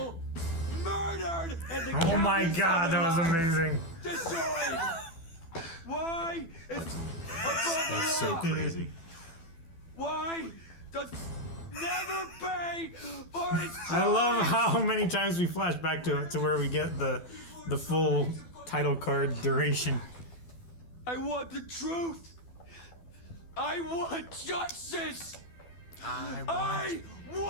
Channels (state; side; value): late; right; 12 ms